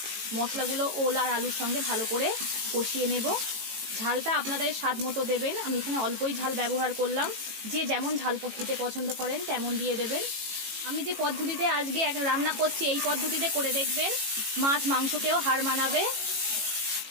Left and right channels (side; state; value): left; late; 18 ms